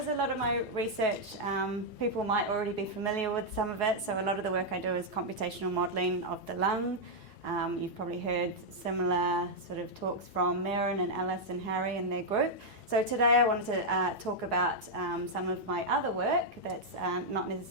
a lot of my research, people might already be familiar with some of it, so a lot of the work I do is computational modelling of the lung. You've probably heard similar sort of talks from Marin and Alice and Harry and their group. So today I wanted to talk about some of my other work that's not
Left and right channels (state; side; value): late; right; 4.7 ms